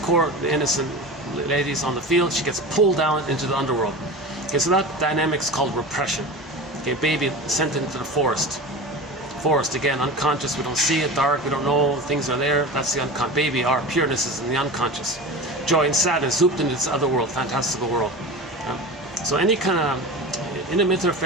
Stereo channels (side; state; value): both; normal; correlation 0.31